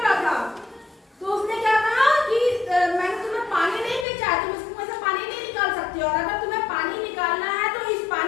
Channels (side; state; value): right; drops out; at 4.0 s